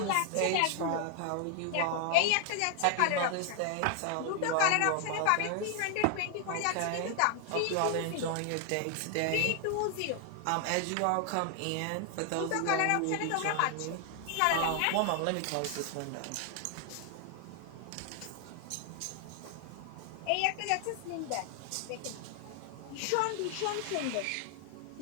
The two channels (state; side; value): different; both; correlation 0.00